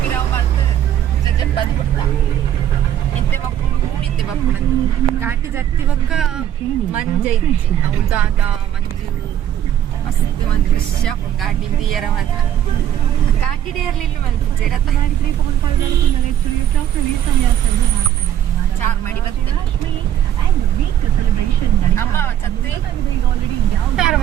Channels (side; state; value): left; quieter; 10.7 dB